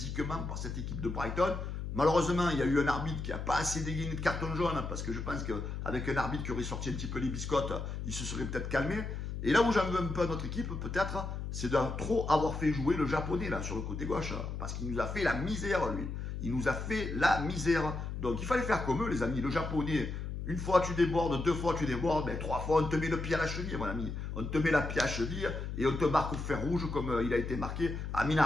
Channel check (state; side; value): noise; left; hum, 5 dB below the sound